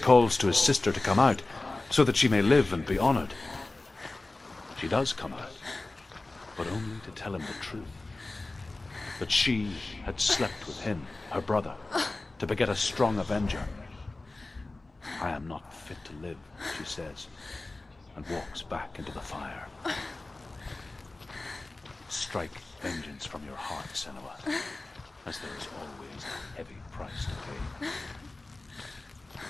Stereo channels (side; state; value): right; quieter; 3.1 dB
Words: calls to his sister to come out so that she may live and be honored. She does come out, but only to tell him the truth. That she had slept with him, her brother, to beget a strong avenger. I am not fit to live, she says, and walks back into the fire. Strike vengeance from your heart, Senua, as there is always a heavy price to pay.